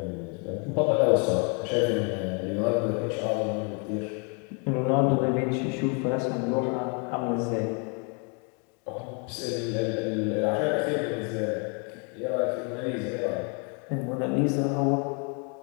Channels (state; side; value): quieter; right; 36.5 dB